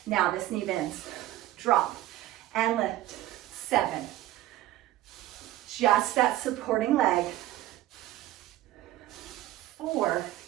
Now this knee bends. Drop and lift. 7. Just that supporting leg. 4,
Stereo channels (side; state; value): left; quieter; 15.1 dB